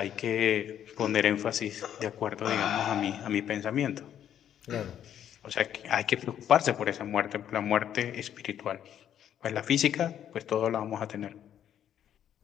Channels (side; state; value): right; quieter; 10.1 dB